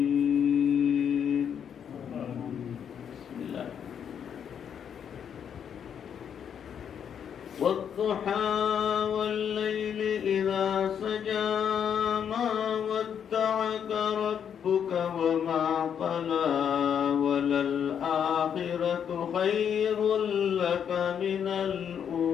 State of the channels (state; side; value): quieter; right; 8.2 dB